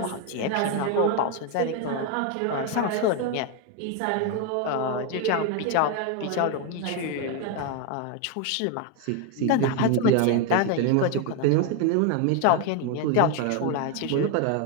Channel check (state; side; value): different; both; correlation 0.01